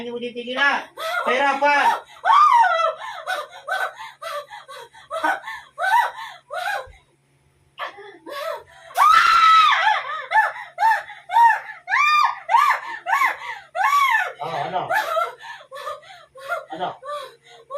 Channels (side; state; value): both; identical; correlation 1.00